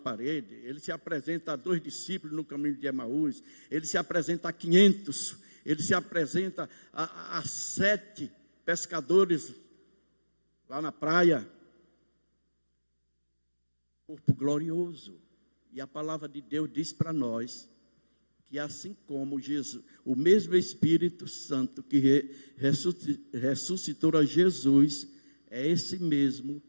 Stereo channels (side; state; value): both; inverted; correlation -1.00